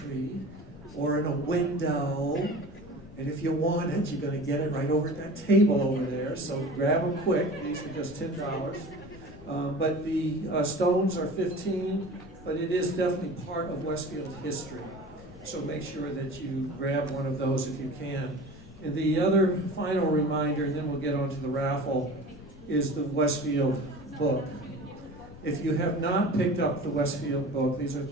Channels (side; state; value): left; noise; rumble, 19 dB below the sound